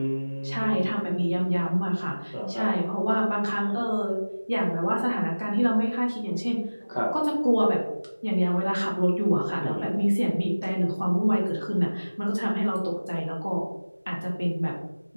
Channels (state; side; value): inverted; both; correlation -1.00